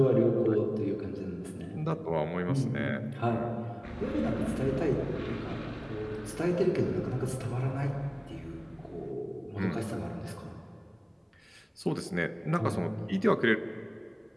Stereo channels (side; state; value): both; identical; correlation 1.00